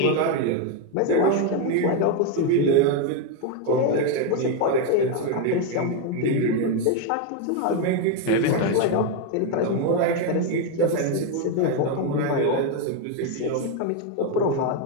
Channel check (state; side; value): different; both; correlation 0.02